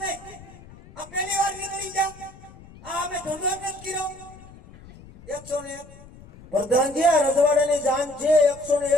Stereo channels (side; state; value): left; noise; rumble, 20 dB below the sound